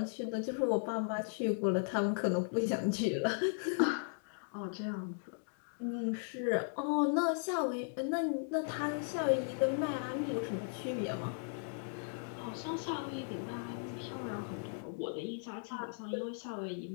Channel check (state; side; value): silent; right; digital silence